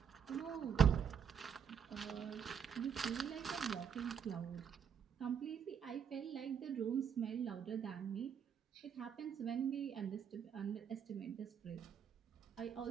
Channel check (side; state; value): left; quieter; 7.7 dB